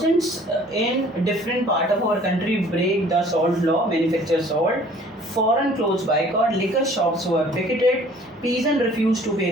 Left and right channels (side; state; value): both; normal; correlation 0.53